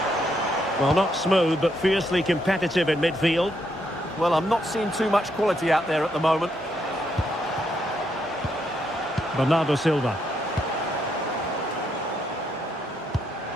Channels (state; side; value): normal; both; correlation 0.77